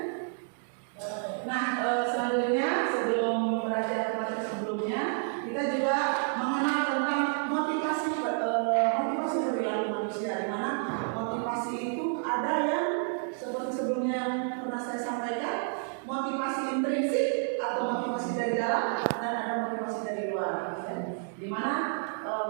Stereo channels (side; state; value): left; silent; 57 dB below the other